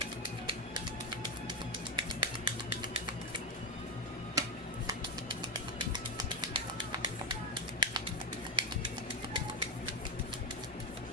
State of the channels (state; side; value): normal; both; correlation 0.11